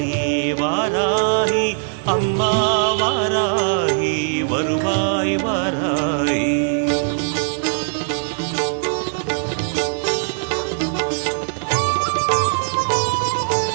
வாராகி அம்மா வாராகி வருவாய் வாராகி.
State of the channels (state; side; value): silent; left; 66 dB below the other